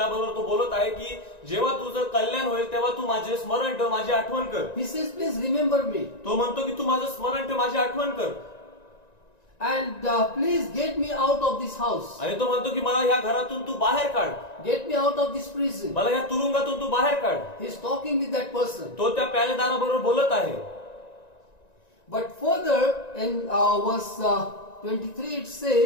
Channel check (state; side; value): late; right; 1.9 ms